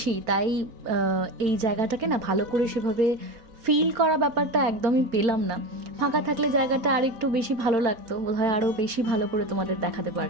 তাই এই জায়গাটাকে না ভালো করে সেভাবে ফিল করা ব্যাপারটা একদমই পেলাম না। ফাঁকা থাকলে জায়গাটা আর একটু বেশি ভালো লাগতো, বোধহয় আরও বেশি ভালো করে তোমাদের দেখাতে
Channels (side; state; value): left; late; 4.4 ms